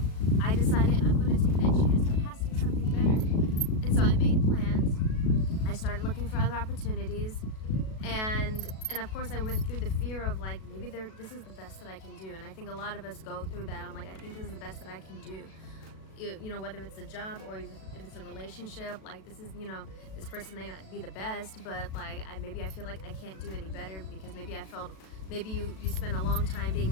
I decided I'm going to take that chance. There has to be something better. And so I made plans. I started looking for other opportunities, and of course I went through the fear of like, maybe this is the best that I can do. And I think a lot of us go through that. I'm like, I think this is the best that I can do. You know, whether it's a job or if it's a relationship, like this is, you know, this person may not be the best, but like maybe I feel like I can't do any better because maybe I felt, maybe you spent a long time being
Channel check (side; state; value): right; late; 37 ms